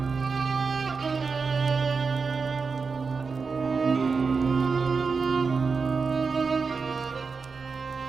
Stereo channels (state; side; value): quieter; left; 4.9 dB